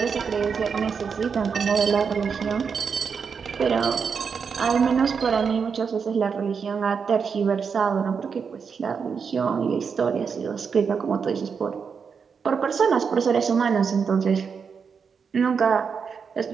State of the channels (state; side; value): quieter; left; 6.1 dB